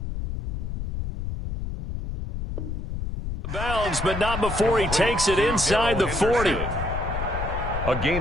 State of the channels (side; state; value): left; noise; rumble, 5 dB below the sound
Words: bounds, but not before he takes it inside the 40. A